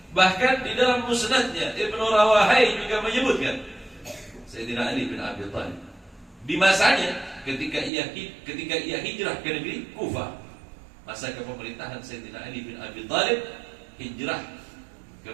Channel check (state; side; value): drops out; left; at 7.9 s